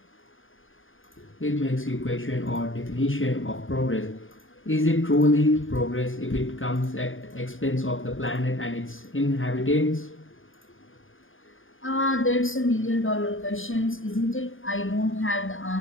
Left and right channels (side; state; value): right; late; 0.58 ms